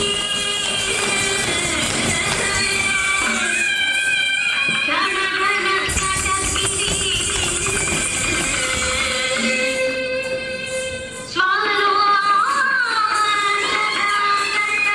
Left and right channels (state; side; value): identical; both; correlation 1.00